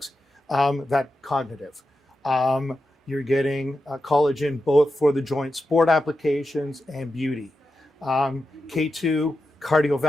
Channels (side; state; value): both; normal; correlation 0.90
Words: that cognitive. You're getting collagen both for the joint sport applications and beauty. K2,